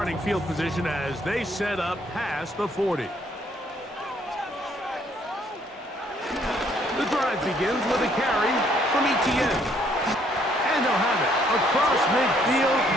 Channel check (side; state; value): both; normal; correlation 0.66